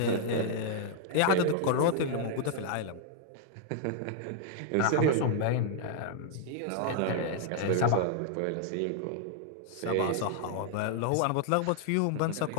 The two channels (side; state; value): both; different; correlation 0.00